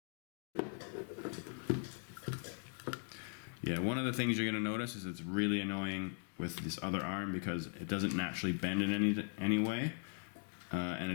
Yeah, one of the things you're going to notice is it's really annoying with this other arm because it doesn't naturally bend in any way, and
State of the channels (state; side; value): silent; right; 51 dB below the other